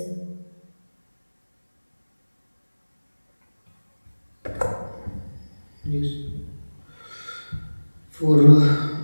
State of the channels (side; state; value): both; inverted; correlation -1.00